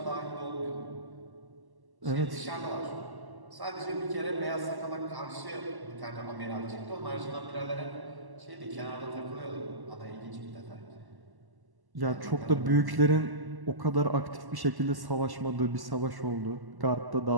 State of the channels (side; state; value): left; late; 1.1 ms